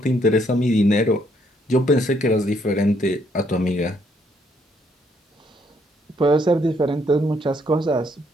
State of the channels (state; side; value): normal; both; correlation 0.70